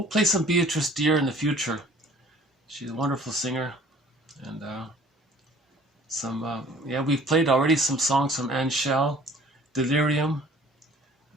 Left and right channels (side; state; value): both; normal; correlation 0.52